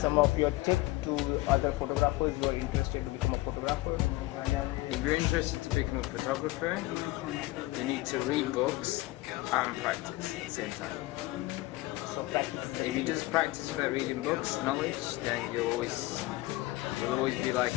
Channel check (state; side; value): quieter; right; 19.5 dB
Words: of your tips to other photographers who are interested to become a photographer? If you're interested to become a photographer, you need to read books and practice at the same time. So practice. If you just practice without reading books, knowledge, then you'll always be like